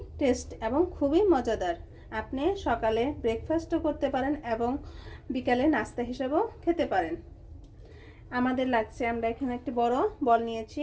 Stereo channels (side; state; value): both; identical; correlation 1.00